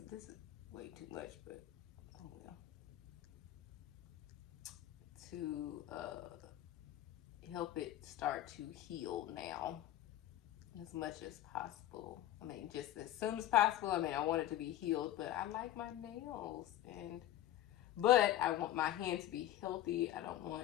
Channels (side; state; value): right; quieter; 13.2 dB